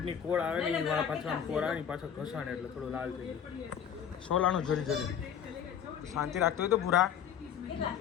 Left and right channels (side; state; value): right; quieter; 8.5 dB